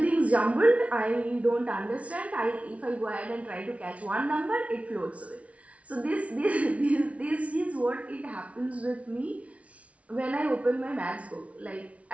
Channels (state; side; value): late; left; 0.065 ms